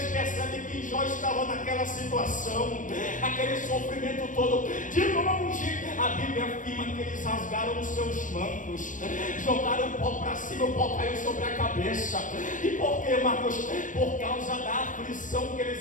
percebem que Jó estava naquela situação, aquele sofrimento todo, de longe, a Bíblia afirma que eles rasgaram os seus mantos, jogaram o pó para cima, o pó caiu sobre a cabeça. E por quê, Marcos? Por causa da aflição que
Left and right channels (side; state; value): right; late; 0.38 ms